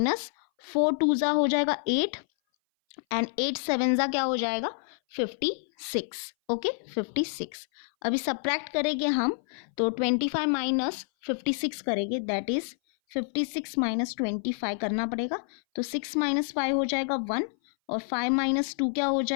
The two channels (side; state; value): right; silent; 58 dB below the other